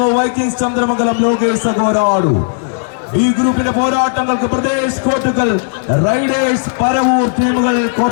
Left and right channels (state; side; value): silent; right; digital silence